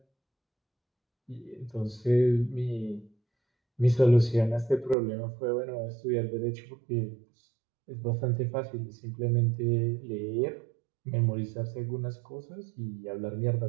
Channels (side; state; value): left; drops out; at 5.0 s